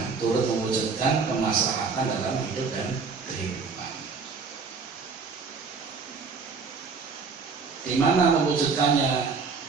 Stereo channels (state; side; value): quieter; left; 5.0 dB